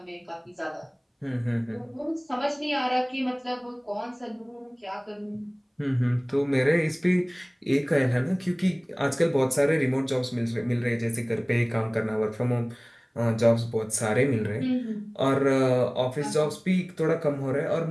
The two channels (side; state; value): both; identical; correlation 1.00